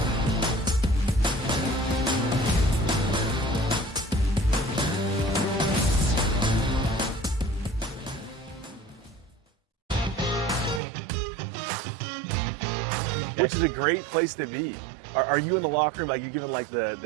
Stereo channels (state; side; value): drops out; left; at 10.8 s